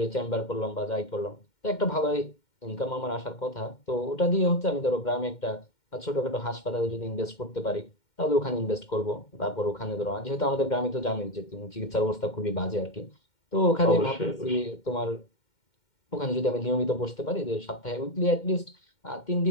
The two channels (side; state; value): right; late; 2.1 ms